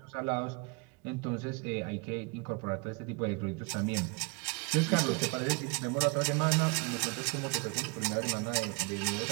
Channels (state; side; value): quieter; left; 31.2 dB